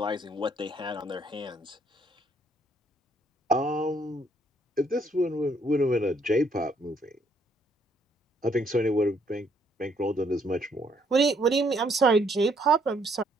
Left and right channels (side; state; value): both; normal; correlation 0.68